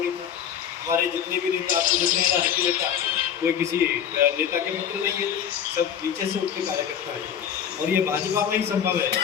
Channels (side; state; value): right; quieter; 8.7 dB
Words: था। हमारे जितने भी नेता आपको दिख रहे हैं, हर नेता कोई किसी नेता के मित्र नहीं है, सब नीचे से उठ के कार्यकर्ता है। और ये भाजपा में ही संभव है